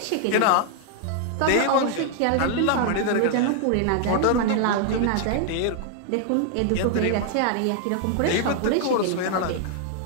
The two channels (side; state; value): both; different; correlation 0.00